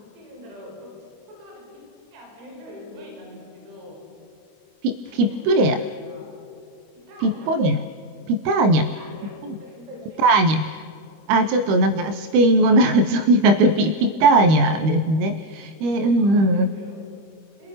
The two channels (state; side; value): late; left; 25 ms